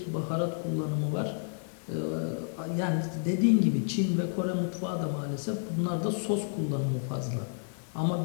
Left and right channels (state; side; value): silent; right; 58 dB below the other